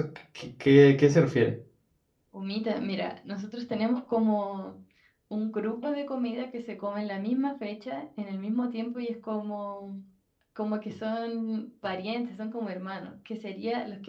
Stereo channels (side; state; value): both; identical; correlation 1.00